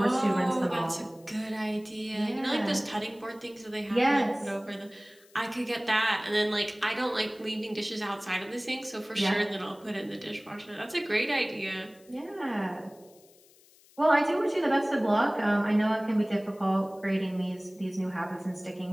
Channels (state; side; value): noise; left; hiss, 28 dB below the sound